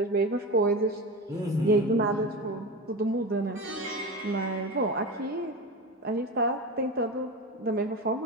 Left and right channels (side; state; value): both; normal; correlation 0.24